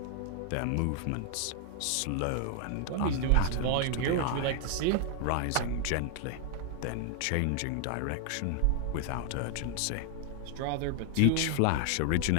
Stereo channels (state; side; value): different; both; correlation 0.00